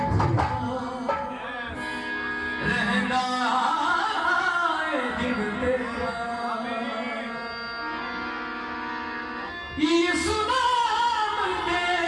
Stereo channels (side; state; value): both; identical; correlation 1.00